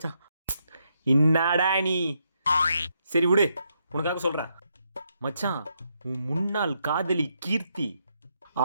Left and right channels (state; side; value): inverted; both; correlation -0.78